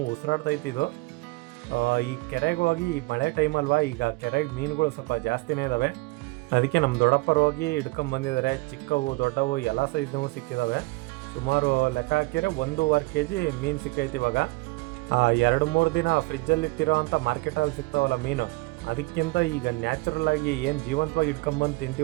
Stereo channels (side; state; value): left; quieter; 24.0 dB